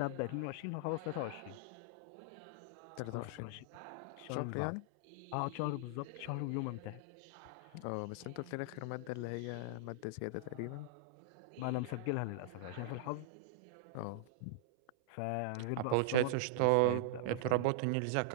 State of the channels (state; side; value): different; both; correlation -0.01